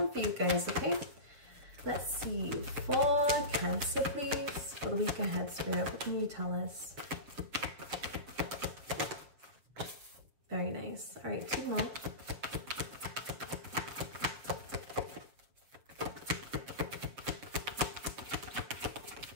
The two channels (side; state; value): left; late; 7.4 ms